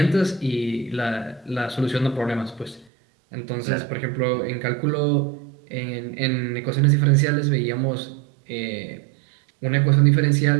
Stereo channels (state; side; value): drops out; left; at 2.9 s